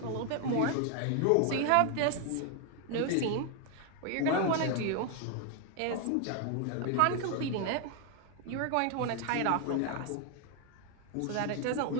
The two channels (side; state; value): both; different; correlation 0.00